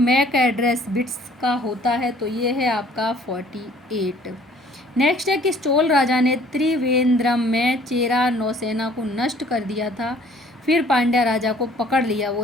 एड्रेस बिट्स का होता है, तो ये है आपका 48। नेक्स्ट है कि चोल राजा ने त्रिवेंद्रम में चेरा नौसेना को नष्ट कर दिया था, फिर पांड्या राजा को पकड़ लिया,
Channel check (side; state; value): both; normal; correlation 0.56